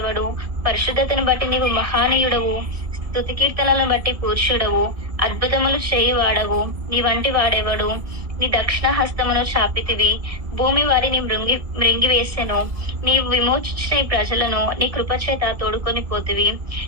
పరిశుద్ధతను బట్టి నీవు మహానీయుడవు. స్తుతి కీర్తనలను బట్టి పూజ్యుడవు. అద్భుతములు చేయువాడవు. నీ వంటి వాడెవడు? నీ దక్షిణ హస్తమును చాపితివి. భూమి వారిని మృంగివేసెను. నీవు విమోచించిన ఈ ప్రజలను నీ కృపచేత తోడుకొని పోతివి.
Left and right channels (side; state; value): left; late; 1.6 ms